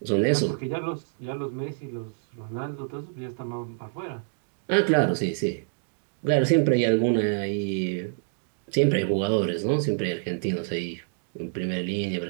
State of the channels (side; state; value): left; silent; 60 dB below the other